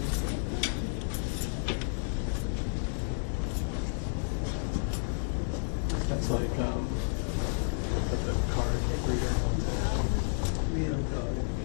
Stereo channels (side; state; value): right; silent; digital silence